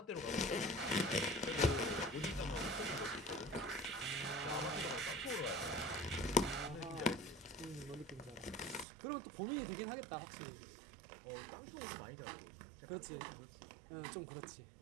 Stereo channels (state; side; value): drops out; left; at 8.8 s